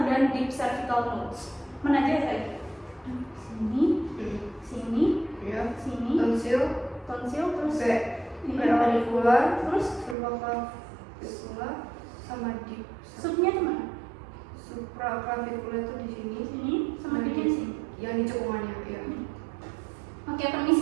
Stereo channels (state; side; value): drops out; left; at 10.2 s